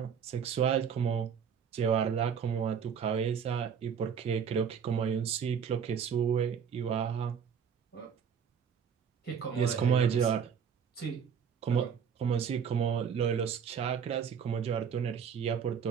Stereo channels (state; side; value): quieter; left; 7.2 dB